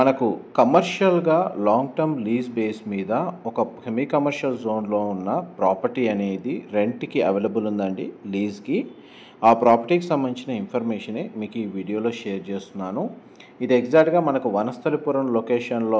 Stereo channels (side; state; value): both; identical; correlation 1.00